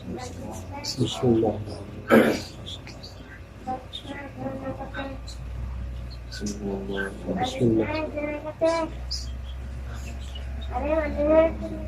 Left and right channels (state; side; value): identical; both; correlation 1.00